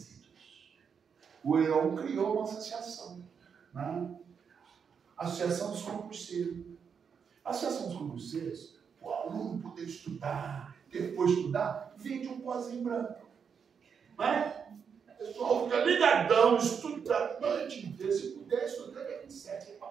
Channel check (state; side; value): quieter; left; 6.7 dB